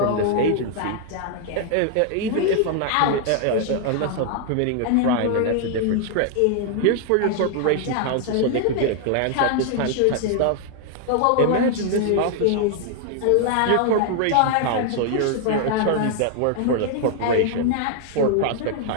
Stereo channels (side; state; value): both; different; correlation 0.00